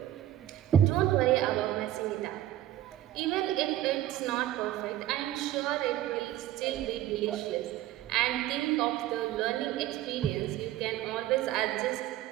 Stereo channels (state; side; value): quieter; left; 13.3 dB